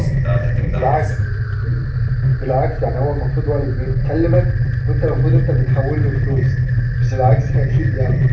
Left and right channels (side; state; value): both; identical; correlation 1.00